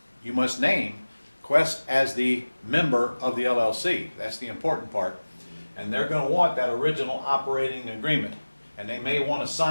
you must name Quest as the member of the LLC. That's the important part. And they're going to want that original operating agreement, and they may want to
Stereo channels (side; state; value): both; inverted; correlation -1.00